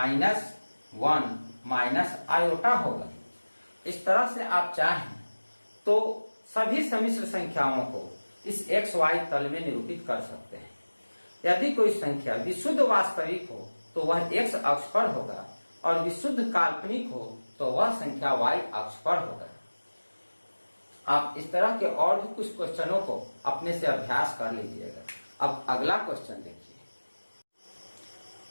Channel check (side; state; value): both; inverted; correlation -1.00